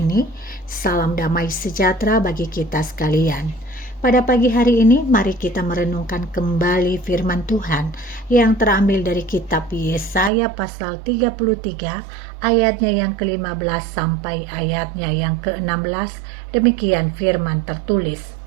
Salam damai sejahtera bagi kita sekalian. Pada pagi hari ini mari kita merenungkan kembali firman Tuhan yang terambil dari kitab Yesaya pasal 33 ayatnya yang ke-15 sampai ayatnya yang ke-16. Demikian firman tertulis.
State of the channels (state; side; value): drops out; left; at 10.3 s